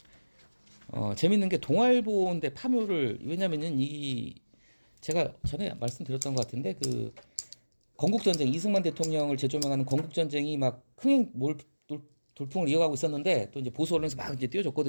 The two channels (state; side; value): inverted; both; correlation -1.00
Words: 재밌는 게 동아일보인데 파묘를 왜냐면은 이 제가 전에 말씀드렸던 것 같은데 그 건국전쟁 이승만 대통령을 재조명하는 건국전쟁이 막 흥행 돌풍을 이어가고 있었는데 또 이제 보수 언론에서 막 이제